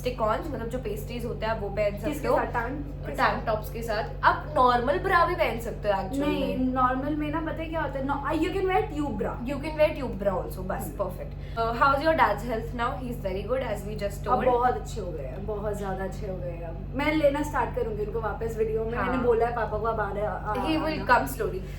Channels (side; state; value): both; identical; correlation 1.00